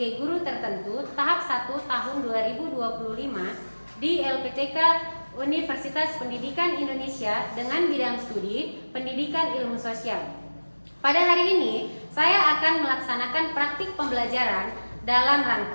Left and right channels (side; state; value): both; inverted; correlation -1.00